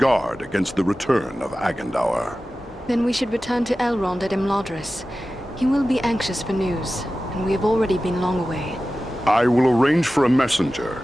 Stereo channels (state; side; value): normal; both; correlation 0.95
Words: against the return of Agandaûr. Then we should return to Elrond at Imladris. He will be anxious for news, and we have already been long away. I will arrange for a messenger.